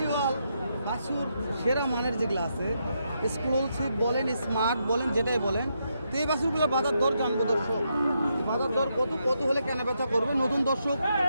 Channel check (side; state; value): both; inverted; correlation -0.81